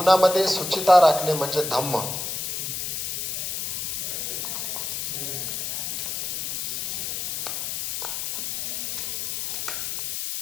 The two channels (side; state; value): left; noise; hiss, 2 dB below the sound